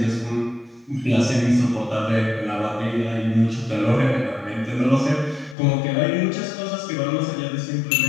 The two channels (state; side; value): drops out; right; at 5.6 s